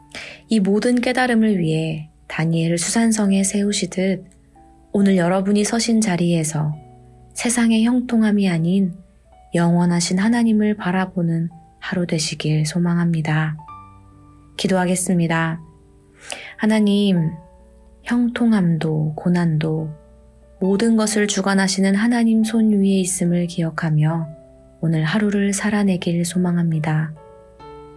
이 모든 깨달음을 위해 다니엘을 수산성에 세우시듯 오늘 여러분이 서신 자리에서 세상의 형통함이 아닌 영원하신 하나님을 바라보는 하루 되시길 소망합니다. 기도하겠습니다. 하나님, 형통함도 고난도 모든 것을 주관하시는 하나님 손 위에 있음을 기억하며 오늘 하루를 살아내길 소망합니다.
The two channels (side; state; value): both; identical; correlation 1.00